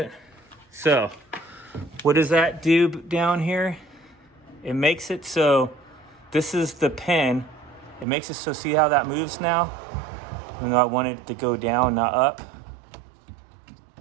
So, what does that do down here? It makes it so this is the pin. It makes it so, see how that moves now? Even though I want it to go down, not up.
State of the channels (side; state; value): left; drops out; at 8.1 s